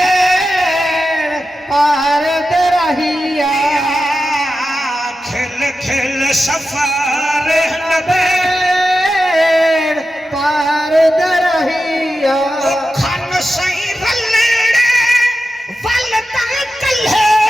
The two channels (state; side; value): normal; both; correlation 0.91